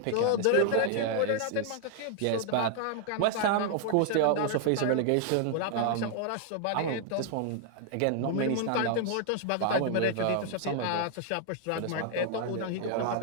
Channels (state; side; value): different; both; correlation -0.01